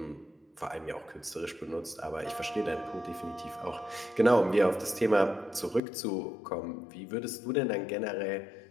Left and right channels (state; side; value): drops out; right; at 5.8 s